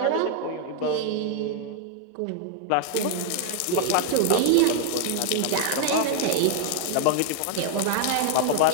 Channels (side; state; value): both; different; correlation 0.00